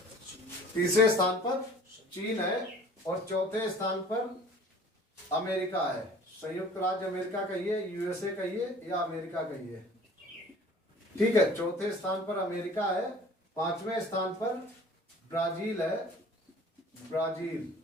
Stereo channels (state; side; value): normal; both; correlation 0.48